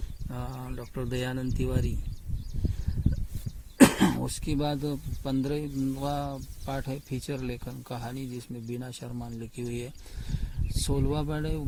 डॉक्टर दयानंद तिवारी। उसके बाद 15वां पाठ है फीचर लेखन कहानी, जिसमें बीना शर्मा ने लिखी हुई है। 16वां पाठ है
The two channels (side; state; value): both; identical; correlation 1.00